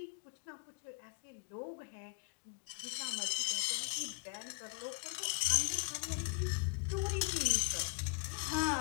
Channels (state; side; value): quieter; right; 26.4 dB